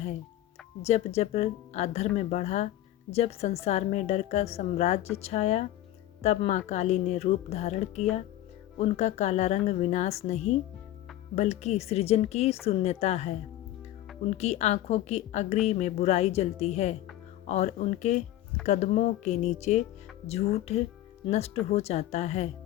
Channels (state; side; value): quieter; right; 14.0 dB